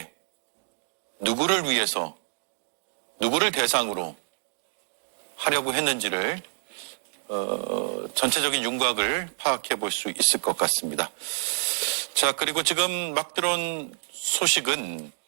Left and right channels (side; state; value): left; silent; digital silence